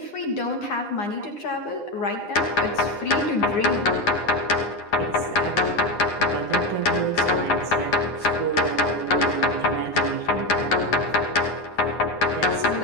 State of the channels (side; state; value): right; late; 9.8 ms